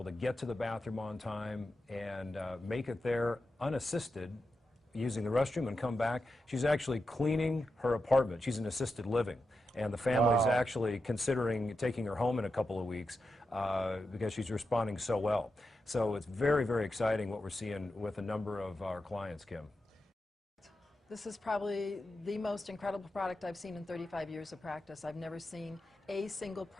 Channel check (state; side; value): normal; both; correlation 0.89